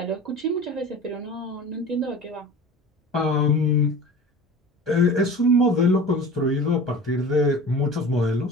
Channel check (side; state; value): both; normal; correlation 0.37